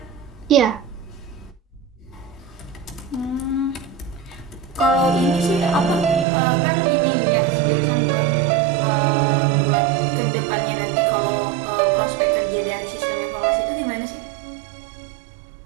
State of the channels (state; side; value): drops out; left; at 6.2 s